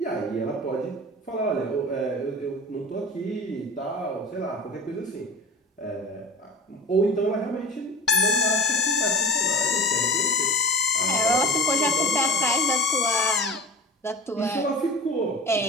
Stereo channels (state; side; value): normal; both; correlation 0.38